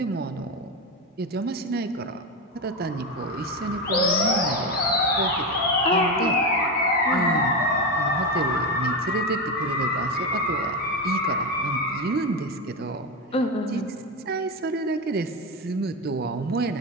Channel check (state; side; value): normal; both; correlation 0.15